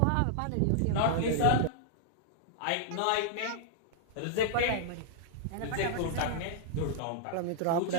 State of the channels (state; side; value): different; both; correlation -0.01